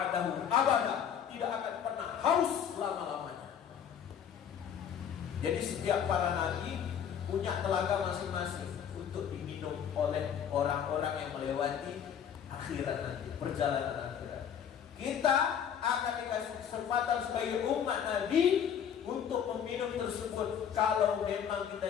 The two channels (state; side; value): quieter; right; 8.5 dB